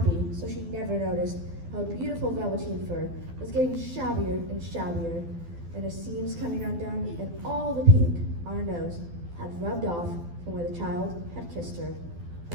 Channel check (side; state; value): left; late; 12 ms